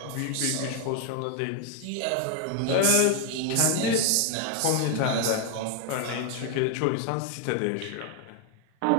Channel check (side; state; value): both; different; correlation 0.00